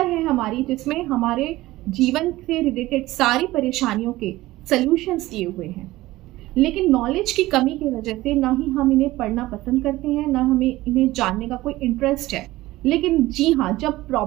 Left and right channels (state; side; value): quieter; left; 17.6 dB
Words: है हमारी, जिसमें हमारे जीवन से रिलेटेड सारी परेशानियों के सल्यूशंस दिए हुए हैं। लेकिन नॉलेज की कमी की वजह से ना ही हम इन्हें पढ़ना पसंद करते हैं, ना हमें इन्हें जानने का कोई इंटरेस्ट है। लेकिन जी हाँ, जब